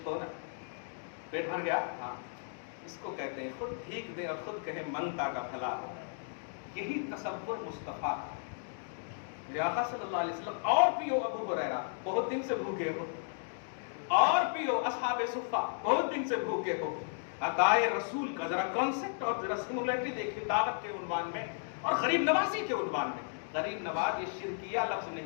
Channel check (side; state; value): right; silent; digital silence